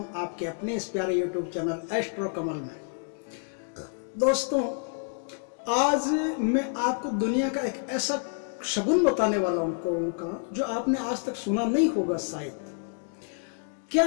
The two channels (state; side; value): silent; right; 59 dB below the other